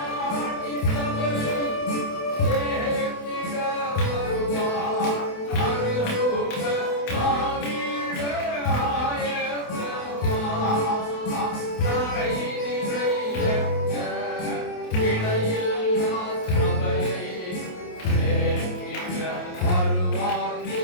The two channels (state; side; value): late; right; 28 ms